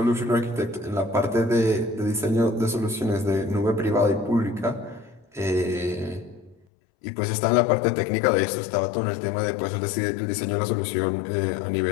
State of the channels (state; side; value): drops out; right; at 6.6 s